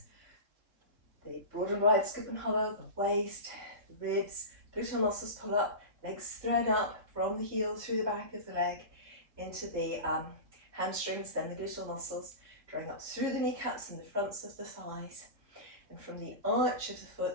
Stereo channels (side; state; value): left; late; 3.7 ms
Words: the broad and wide scoop and hollow, the waist, the ribs, gluteal muscles pull up, legs thread up from the heel through the back of the leg into the hamstrings, then the gluteal muscles, drawing up through the kneecaps and the fronts of the thighs, and from the arch of the